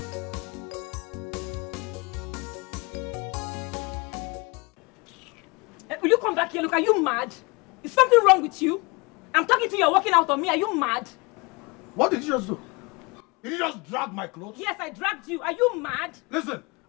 Will you come back here? Look, are you mad? Is something wrong with you? I'm talking to you, you're walking out on me. Are you mad? What did you just do? Did you just drag my clothes? Yes, I dragged you. Are you mad? Listen,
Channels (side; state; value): right; quieter; 27.5 dB